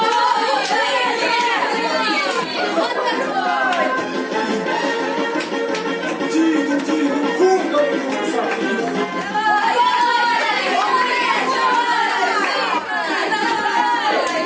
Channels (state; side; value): identical; both; correlation 1.00